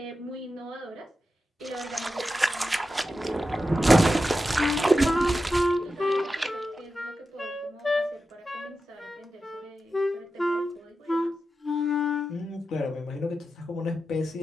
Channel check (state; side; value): normal; both; correlation 0.91